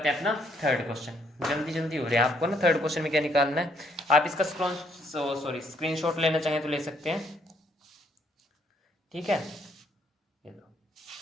हैं अपना थर्ड क्वेश्चन, जल्दी जल्दी हो रहे हैं आपको ना। थर्ड क्वेश्चन में क्या निकालना है, आप इसका स्क्रीनशॉट लेना चाहें तो ले सकते हैं, ठीक है। ये लो,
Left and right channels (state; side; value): normal; both; correlation 0.69